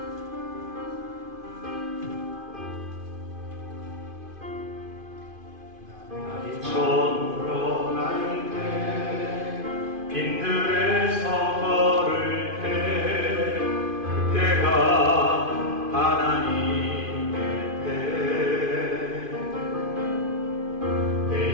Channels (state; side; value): late; left; 2.5 ms